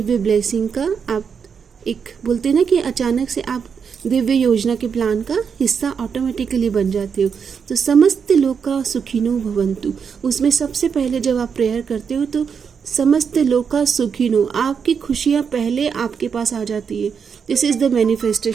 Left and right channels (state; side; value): quieter; left; 6.5 dB